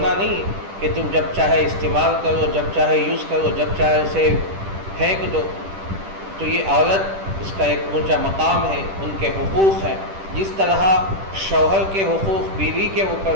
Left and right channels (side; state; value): left; late; 10 ms